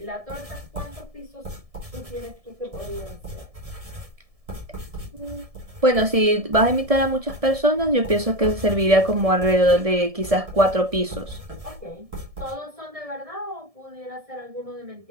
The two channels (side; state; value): left; late; 1.7 ms